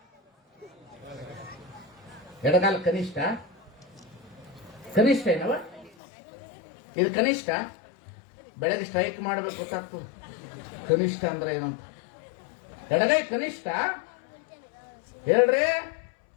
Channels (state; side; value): drops out; right; at 5.9 s